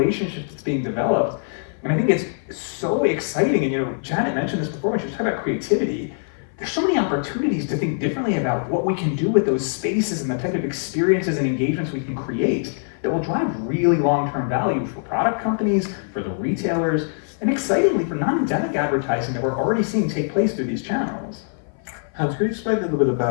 that's being developed. And I think it's so exciting. And Janet mentioned this before when she was talking about creativity. There's so many opportunities to think differently about what we can do with those spaces and the type of experiences and engagements we can create that will drive really long-term value for product companies, for the retailers, and excitingly for non-endemic advertising that we're already seeing take place through these channels. Hans, can you explain a little bit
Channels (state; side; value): silent; right; 56 dB below the other